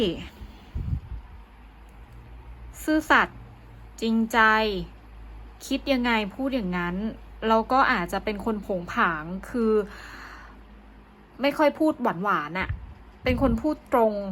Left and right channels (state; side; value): identical; both; correlation 1.00